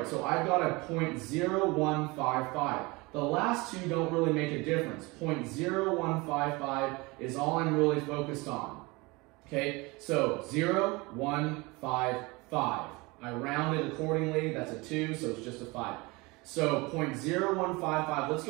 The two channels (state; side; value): quieter; left; 24.7 dB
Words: So I've got a 0.0155. The last two don't really make a difference. 0.0155 is all I'm really focused on. Okay, so 0.155. I round it accordingly. That's a 2, so it's just a 5. So 0.0155. Let's